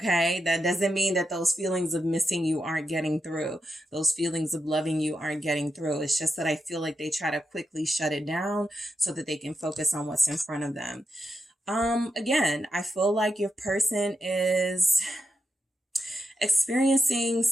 that doesn't mean that those feelings of missing you aren't getting through. Those feelings of loving you aren't getting through. It's just that I feel like they try to quickly shut it down so that they can focus on what's in front of them. Again, I feel like your person is experiencing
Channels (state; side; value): normal; both; correlation 0.87